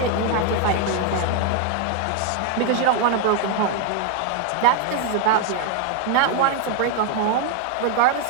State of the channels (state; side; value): different; both; correlation 0.01